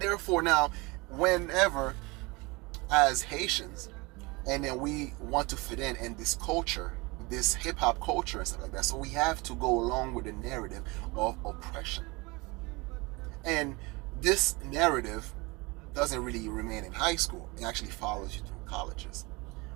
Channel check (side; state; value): left; quieter; 25.3 dB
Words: now, whenever as Haitians, and then we want to fit in this culture, this hip-hop culture and stuff like that, so we have to go along with the narrative of oppression. And this narrative doesn't really remain in high school. It actually follows you through colleges,